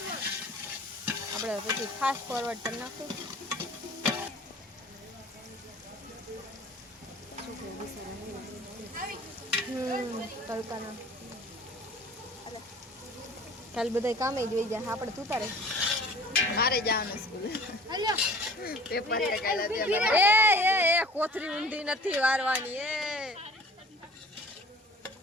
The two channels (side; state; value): both; normal; correlation 0.47